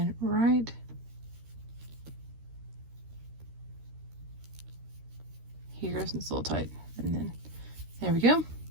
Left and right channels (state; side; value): late; left; 13 ms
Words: right here, since it's a little tight, and then there we go.